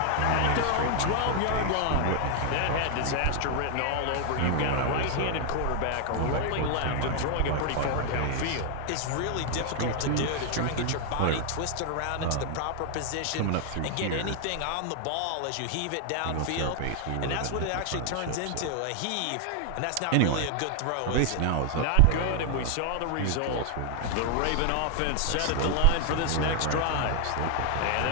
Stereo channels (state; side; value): different; both; correlation 0.00